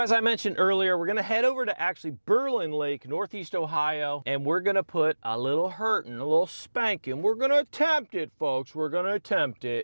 I mentioned earlier, we're gonna head over to actually Berlin Lake, Northeast Ohio, and we're gonna put a little hurtin', a little spanking. We're gonna attempt it, folks. We're gonna attempt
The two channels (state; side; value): inverted; both; correlation -1.00